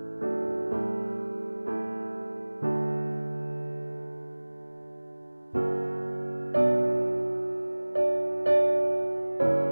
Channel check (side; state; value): both; inverted; correlation -1.00